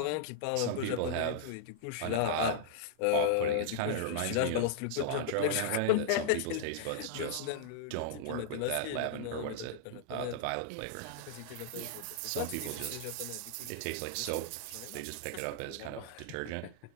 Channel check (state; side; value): different; both; correlation -0.01